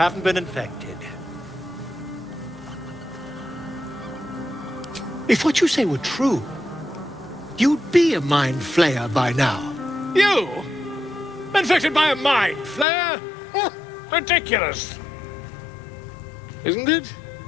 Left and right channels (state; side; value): drops out; right; at 12.9 s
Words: been infected. If what you say were true, you'd be a mind flayer by now. You? Infected by a mind flayer? Ridiculous. Isn't it?